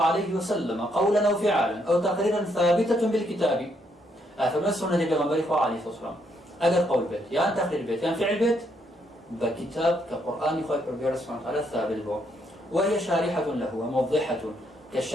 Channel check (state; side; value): normal; both; correlation 0.74